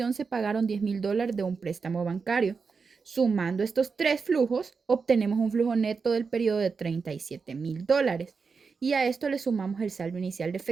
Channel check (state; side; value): quieter; left; 5.1 dB